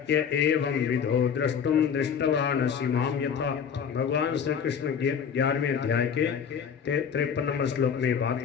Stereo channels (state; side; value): quieter; right; 7.2 dB